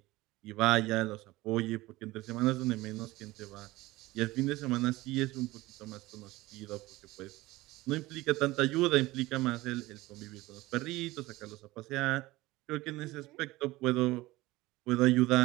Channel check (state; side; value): quieter; left; 19.1 dB